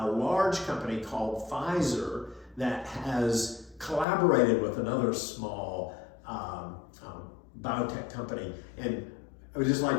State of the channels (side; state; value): right; drops out; at 4.0 s